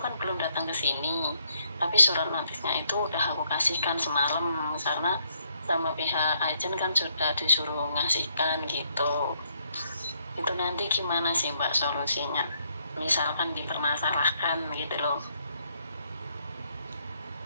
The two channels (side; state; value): both; inverted; correlation -0.72